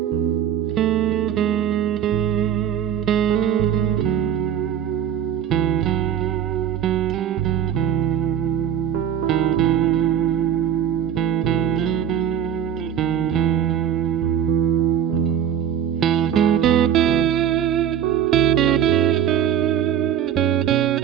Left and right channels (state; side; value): quieter; left; 9.6 dB